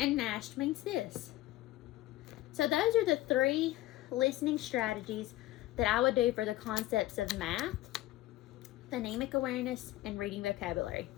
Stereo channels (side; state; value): right; quieter; 16.0 dB